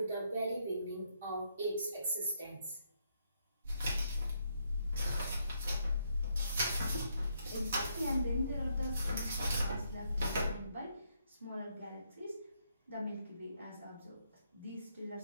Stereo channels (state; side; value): inverted; both; correlation -0.75